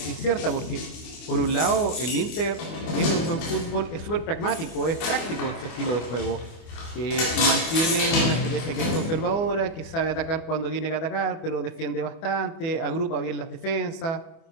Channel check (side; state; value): right; late; 25 ms